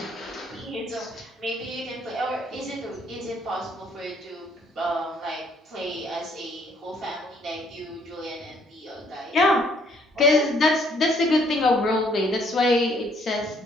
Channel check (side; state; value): both; normal; correlation 0.65